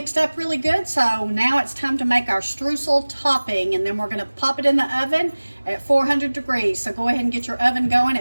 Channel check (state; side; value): inverted; both; correlation -1.00